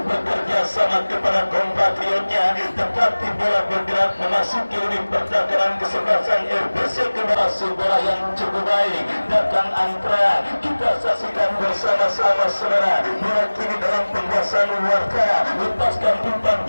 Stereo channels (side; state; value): both; inverted; correlation -1.00